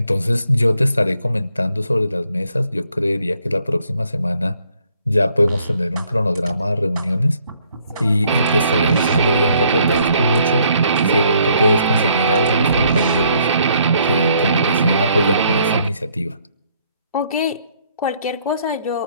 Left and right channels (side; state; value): both; inverted; correlation -0.67